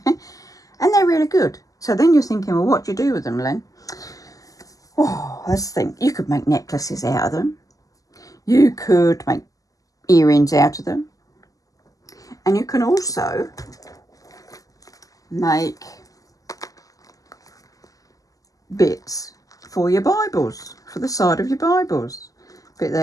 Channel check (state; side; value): late; right; 0.17 ms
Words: they're really good. So then you're thinking, well, what do you do with them, Len? Oh, let's think. You could make necklaces out of them. You could make earrings out of them. And you can also make bits for your Bibles, for the side of your Bibles. Bit